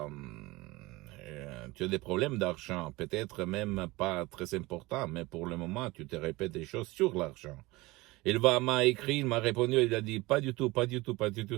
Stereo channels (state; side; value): quieter; left; 21.4 dB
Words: des problèmes d'argent, peut-être même pas très importants, mais pour le moment, tu te répètes des choses sur l'argent. M'a écrit, il m'a répondu, il a dit, pas du tout,